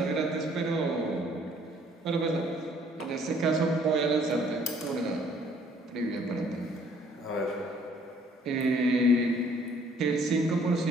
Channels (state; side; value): normal; both; correlation 0.60